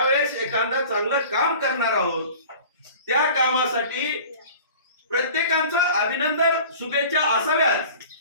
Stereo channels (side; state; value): both; inverted; correlation -0.43